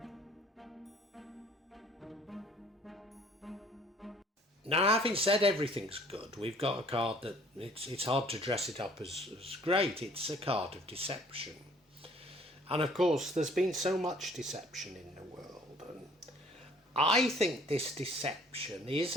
Now, having said everything's good, we've got a card that it's hard to dress it up as great. It's a card of deception. And of course, there's been so much deception in the world. And I think this deception is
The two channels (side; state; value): both; normal; correlation 0.56